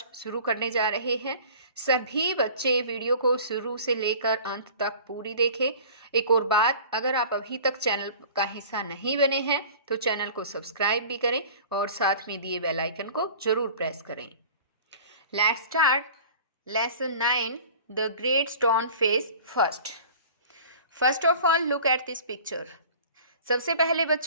शुरू करने जा रहे हैं। सभी बच्चे वीडियो को शुरू से लेकर अंत तक पूरी देखें। एक और बात, अगर आप अभी तक चैनल का हिस्सा नहीं बने हैं तो चैनल को सब्सक्राइब भी करें और साथ में दिए बेल आइकन को जरूर प्रेस करें। Let's start lesson 9 the great stone face first. First of all look at this picture. सबसे पहले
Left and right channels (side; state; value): both; inverted; correlation -0.43